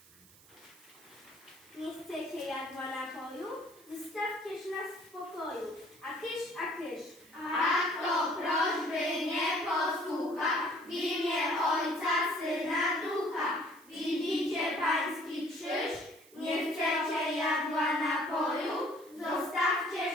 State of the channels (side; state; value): right; noise; hiss, 24 dB below the sound